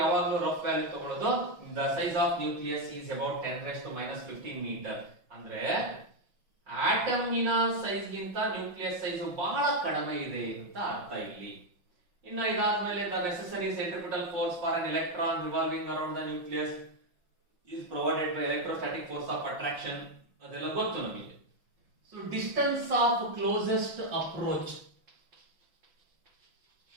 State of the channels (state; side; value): late; left; 5.8 ms